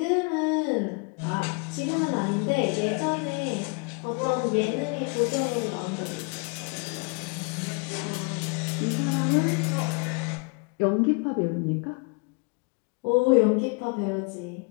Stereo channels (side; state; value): right; quieter; 32.4 dB